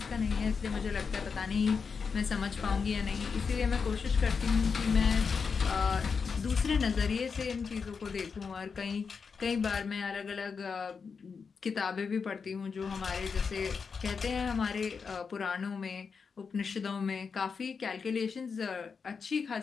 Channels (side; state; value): right; quieter; 5.5 dB